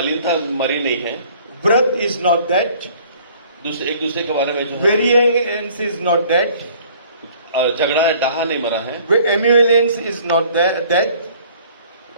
मरी नहीं है। Wrath is not dead. एक दूसरे के बारे में जो है Variance is not dead. झगड़ा है डहा नहीं मरा है। Emulance is not dead.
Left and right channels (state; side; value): inverted; both; correlation -0.54